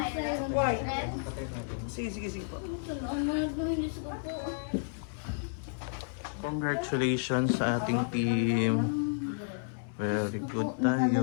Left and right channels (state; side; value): silent; right; 57 dB below the other